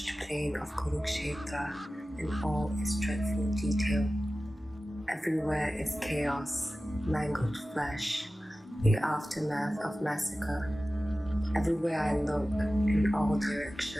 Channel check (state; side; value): normal; both; correlation 0.96